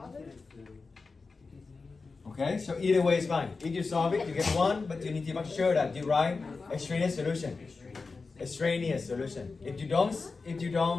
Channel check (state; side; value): quieter; right; 4.2 dB